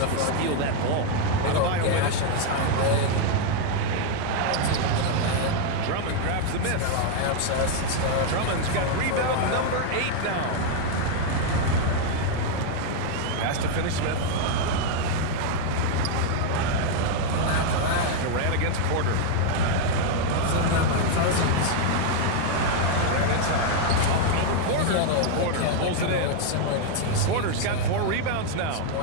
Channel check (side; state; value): both; different; correlation 0.00